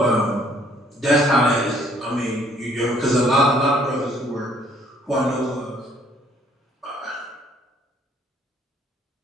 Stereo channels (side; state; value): both; normal; correlation 0.62